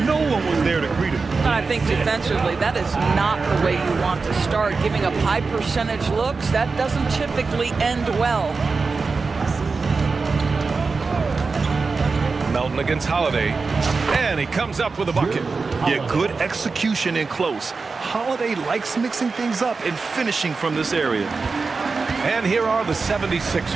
no one was there to greet him. I think defensively, that is not the way you want to start. Giving up high percentage looks, that doesn't typically end well. Melton against Holiday, and he comes up with a bucket. Yeah, good execution in close. Holiday likes mixing things up and finishing from this area. And here are the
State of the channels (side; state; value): left; quieter; 4.4 dB